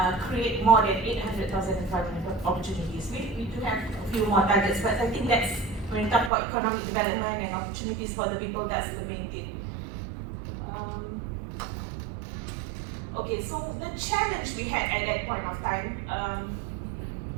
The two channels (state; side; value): drops out; left; at 6.3 s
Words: create more than 800,000 employment opportunities. We do have a few more targets, but I think that's, when we talk about economic development and opportunities for the people, that's the main thing. Okay, so the challenge we had at that point of time,